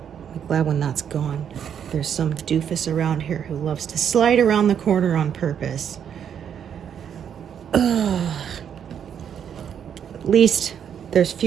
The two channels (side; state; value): left; quieter; 8.5 dB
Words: glad when that's gone. There's some doofus around here who loves to slide around the corner on purpose. Ugh. At least there's